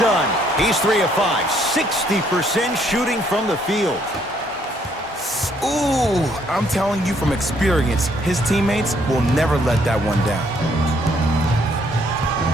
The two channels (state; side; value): normal; both; correlation 0.68